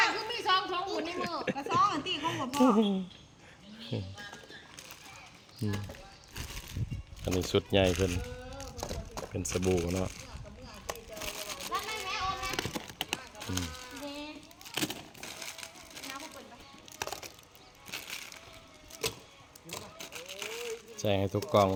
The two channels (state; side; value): identical; both; correlation 1.00